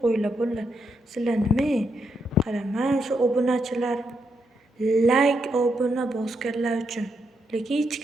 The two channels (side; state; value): both; normal; correlation 0.80